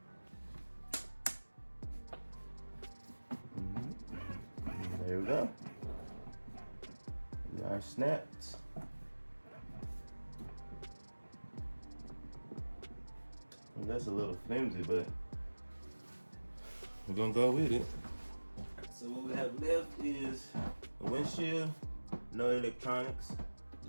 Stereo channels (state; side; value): inverted; both; correlation -1.00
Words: There we go. They are snapped. Well, that's a little flimsy, but we're gonna go with it. So what we have left is a windshield, no electronics.